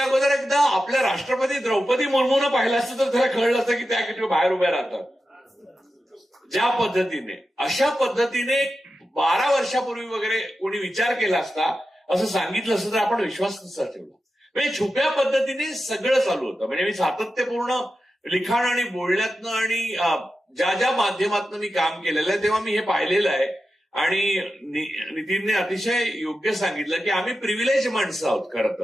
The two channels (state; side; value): normal; both; correlation 0.91